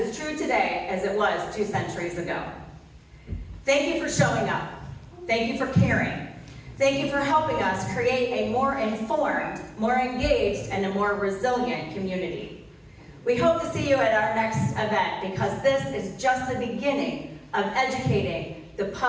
as true today as it was 2 centuries ago. Thank you for showing up. Thank you for caring. Thank you for helping us create a more informed, more engaged, and a more resilient community. We hope to see you at our next event because this is just the beginning of educating the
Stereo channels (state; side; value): identical; both; correlation 1.00